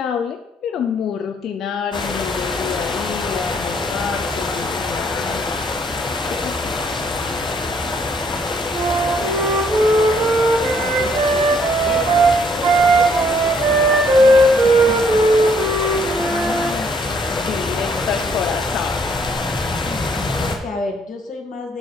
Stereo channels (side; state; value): both; normal; correlation 0.66